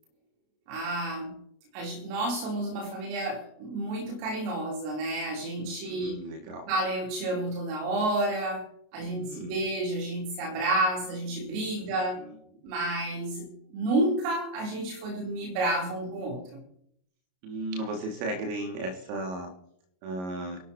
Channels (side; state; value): left; late; 33 ms